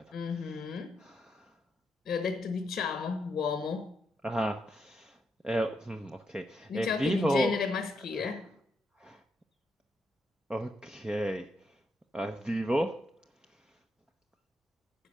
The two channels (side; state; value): both; normal; correlation 0.81